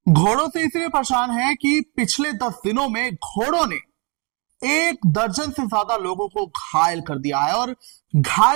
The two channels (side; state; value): left; quieter; 32.6 dB